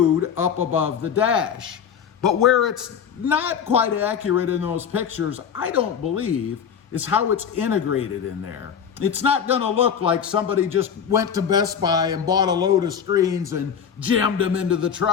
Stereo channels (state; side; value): quieter; right; 7.6 dB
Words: up above the dash. But where it's not quite accurate in those pictures, I don't believe, is how it's integrated in there. It's not going to look like somebody just went to Best Buy and bought a load of screens and jammed them into the